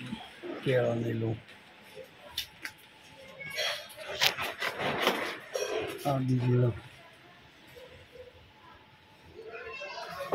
કેળાની લોમ આ બીજી લોમ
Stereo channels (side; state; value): both; identical; correlation 1.00